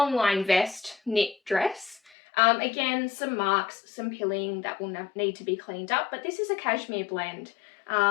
line vest, knit dress. Again, some marks, some pilling that will need to be cleaned up, but this is a cashmere blend.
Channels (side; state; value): right; drops out; at 2.1 s